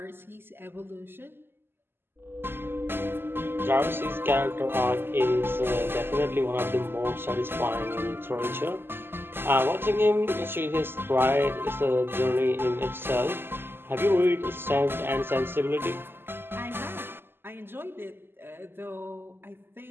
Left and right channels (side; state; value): left; late; 0.11 ms